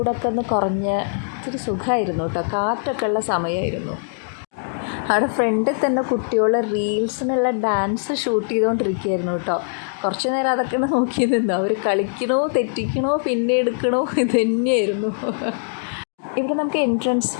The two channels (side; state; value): right; silent; digital silence